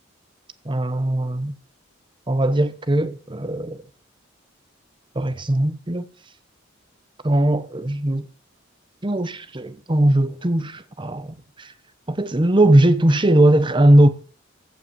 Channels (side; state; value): both; normal; correlation 0.88